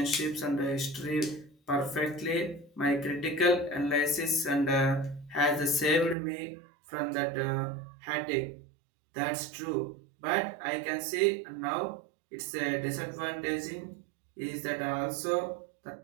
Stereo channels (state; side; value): drops out; left; at 6.2 s